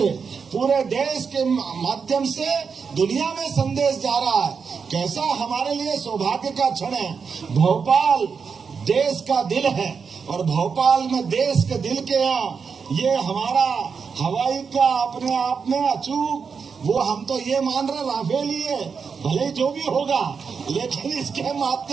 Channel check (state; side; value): quieter; left; 5.8 dB